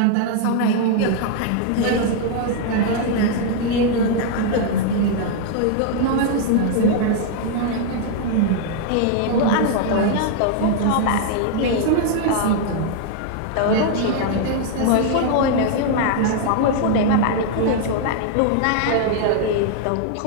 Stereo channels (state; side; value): different; both; correlation 0.00